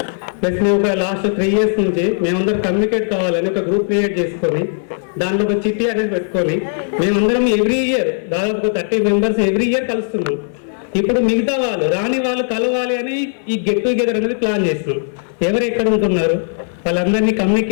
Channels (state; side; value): silent; right; 60 dB below the other